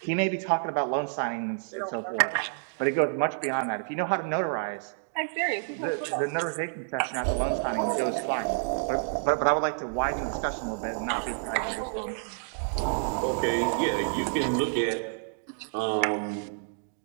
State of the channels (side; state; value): left; silent; digital silence